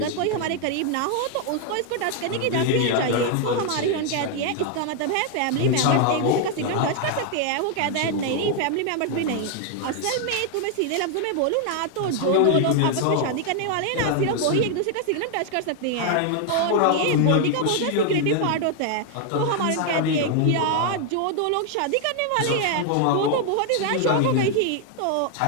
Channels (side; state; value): both; different; correlation 0.00